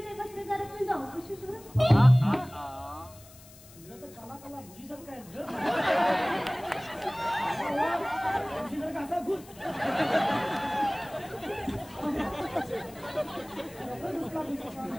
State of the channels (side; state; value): left; noise; hiss, 22 dB below the sound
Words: बसले जरा तुम्ही जाऊ कशी कसा घुस